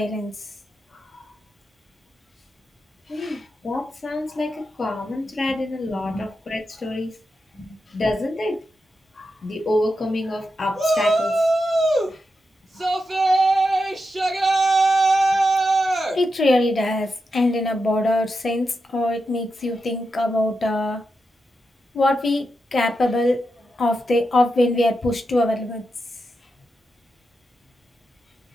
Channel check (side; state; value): both; normal; correlation 0.87